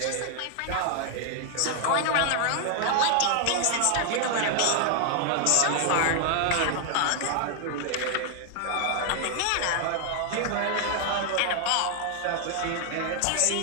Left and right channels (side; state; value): both; different; correlation 0.00